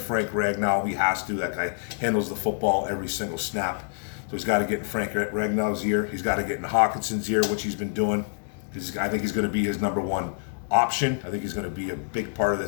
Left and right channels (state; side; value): silent; right; digital silence